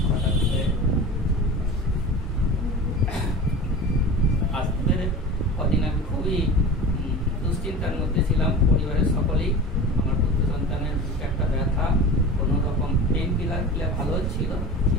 হঠাৎ করে আসতে পেরে কদিন আমি খুবই দুশ্চিন্তার মধ্যে ছিলাম। পরিবারের সকলেই আমার পুত্র সন্তানের একটা ব্যথা, কোনো রকম পেন কিলার খেলে ভালো ছিল,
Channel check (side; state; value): both; normal; correlation 0.34